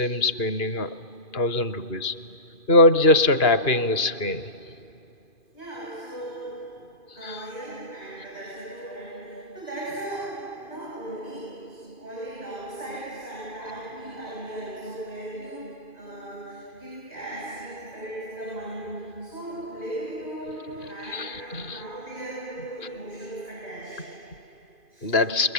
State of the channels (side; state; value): right; late; 2.4 ms